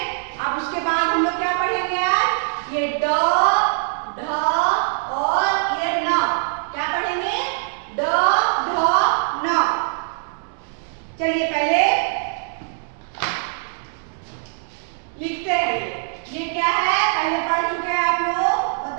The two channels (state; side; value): silent; left; digital silence